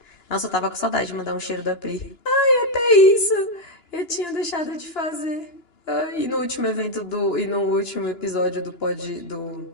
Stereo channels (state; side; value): late; right; 2.9 ms